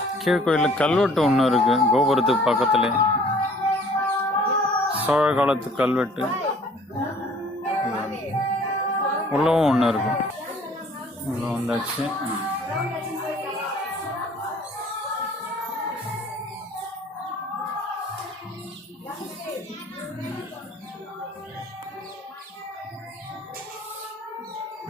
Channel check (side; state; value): both; normal; correlation 0.54